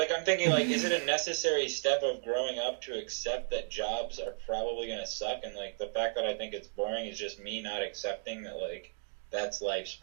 I'm thinking, like, is it a necessary step of growing up to accept that jobs are probably going to suck? And, like, the fact that I think it's boring is just me not accepting that, like, that's life's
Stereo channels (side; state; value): left; silent; digital silence